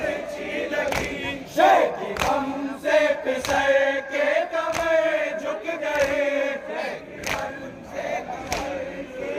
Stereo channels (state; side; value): identical; both; correlation 1.00